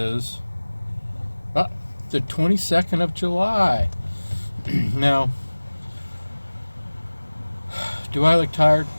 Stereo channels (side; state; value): both; inverted; correlation -1.00